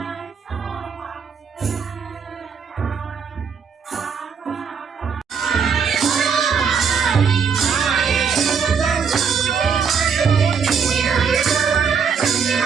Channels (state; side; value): quieter; left; 6.3 dB